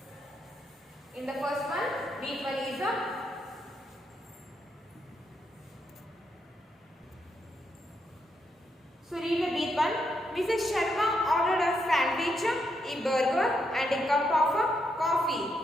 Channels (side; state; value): both; normal; correlation 0.80